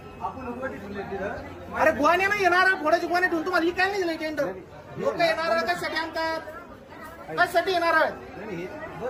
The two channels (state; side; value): identical; both; correlation 1.00